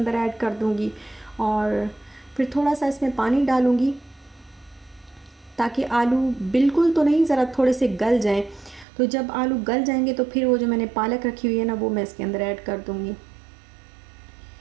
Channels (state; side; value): drops out; left; at 8.8 s